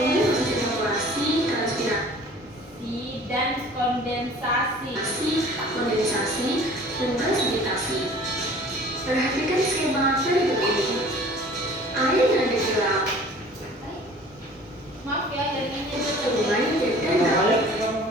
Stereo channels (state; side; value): normal; both; correlation 0.48